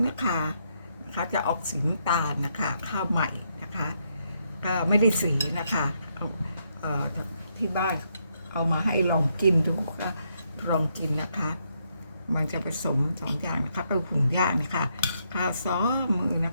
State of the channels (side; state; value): both; inverted; correlation -0.77